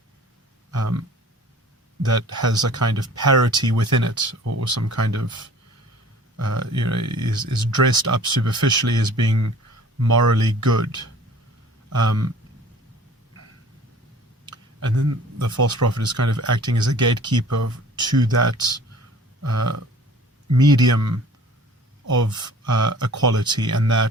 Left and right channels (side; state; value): both; normal; correlation 0.48